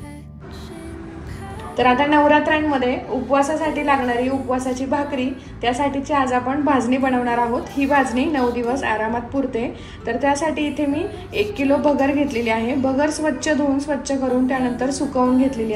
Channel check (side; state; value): both; identical; correlation 1.00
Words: तर आता नवरात्रांमध्ये उपवासासाठी लागणारी उपवासाची भाकरी त्यासाठीची आज आपण भाजणी बनवणार आहोत। ही भाजणी 9 दिवस आरामात पुरते। तर त्यासाठी इथे मी 1 किलो भगर घेतलेली आहे। भगर स्वच्छ धुवून स्वच्छ करून त्यानंतर सुकवून घेतलेली